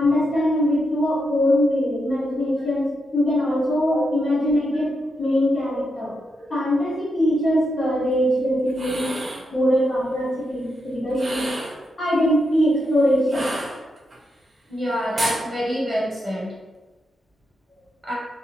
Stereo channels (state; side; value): normal; both; correlation 0.83